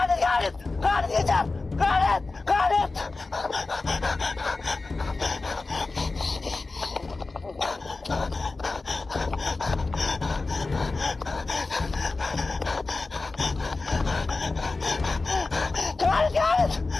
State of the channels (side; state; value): right; quieter; 3.6 dB